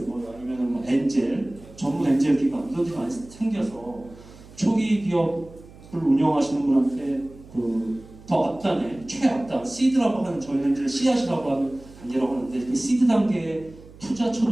아니면 엔젤 전문 엔젤 기관 이런 게 많이 생겨서 초기 기업을 운영하시는 분한테 더 앞단에 최앞단 시드라고 하는 저희는 이제 씨앗이라고 하는 단계라고 하는데 그 시드 단계에 투자처로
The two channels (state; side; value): noise; right; hum, 21 dB below the sound